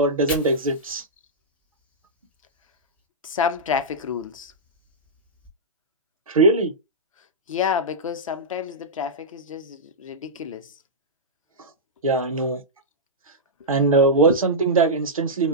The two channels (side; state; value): both; normal; correlation -0.12